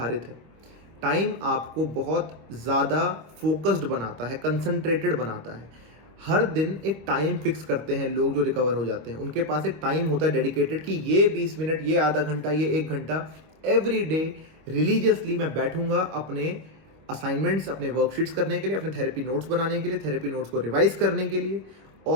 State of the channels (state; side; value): late; left; 26 ms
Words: है। टाइम आपको बहुत ज़्यादा फोकस्ड बनाता है, कंसंट्रेटेड बनाता है। हर दिन एक टाइम फिक्स करते हैं लोग जो रिकवर हो जाते हैं, उनके पास एक टाइम होता है डेडिकेटेड कि ये 20 मिनट, ये आधा घंटा, ये 1 घंटा एवरी डे रिलीजियसली मैं बैठूंगा अपने असाइनमेंट्स, अपने वर्कशीट्स करने के लिए, अपने थेरेपी नोट्स बनाने के लिए, थेरेपी नोट्स को रिवाइज करने के लिए,